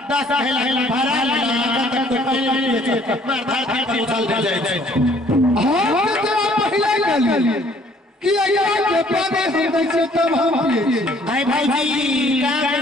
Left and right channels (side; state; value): both; normal; correlation 0.60